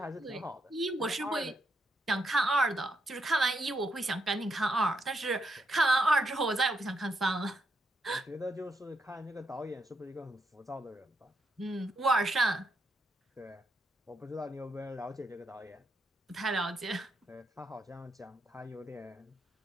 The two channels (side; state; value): both; normal; correlation 0.79